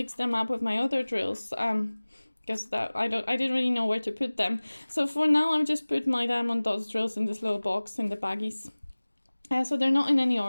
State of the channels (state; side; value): inverted; both; correlation -1.00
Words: them up with my other drills because I didn't really know where to put them. So for now I've just put my Diamond Dotz drills in this little box in the baggies. So they're not in any